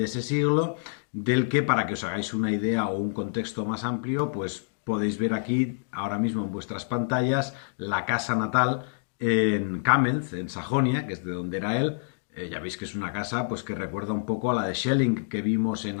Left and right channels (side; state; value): right; silent; digital silence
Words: ese siglo, del que, para que os hagáis una idea o un contexto más amplio, pues podéis ver aquí ahora mismo en vuestras pantallas la casa natal en Kamenz, en Sajonia, que es de donde era él. Ya veis que es una casa pues que recuerda un poco a la de Schelling que vimos en